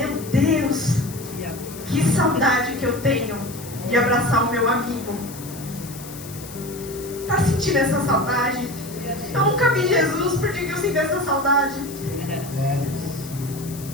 Deus, que saudade que eu tenho de abraçar o meu amigo. Tá sentindo essa saudade? Eu nunca vi Jesus, por que eu sinto essa saudade?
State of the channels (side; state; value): left; noise; hiss, 15 dB below the sound